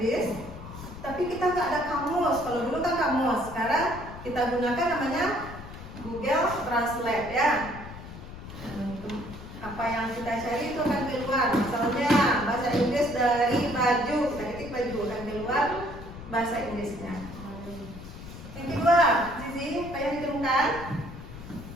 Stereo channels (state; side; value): noise; left; rumble, 13 dB below the sound